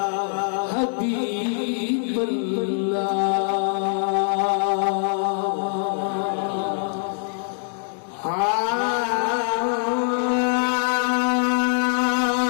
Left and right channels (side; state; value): right; silent; 63 dB below the other